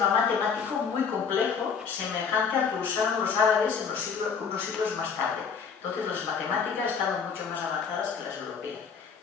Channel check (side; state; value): right; quieter; 6.1 dB